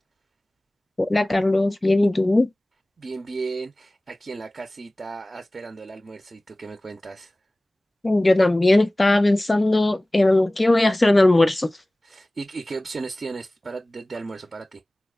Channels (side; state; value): both; normal; correlation 0.98